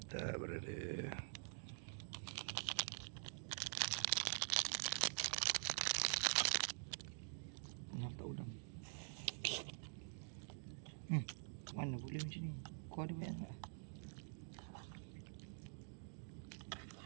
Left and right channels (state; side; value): silent; left; digital silence